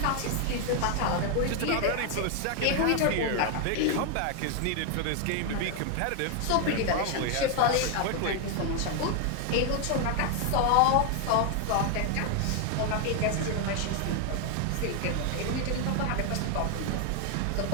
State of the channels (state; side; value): different; both; correlation 0.01